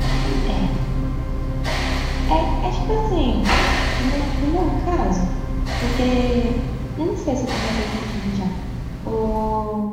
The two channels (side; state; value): both; identical; correlation 1.00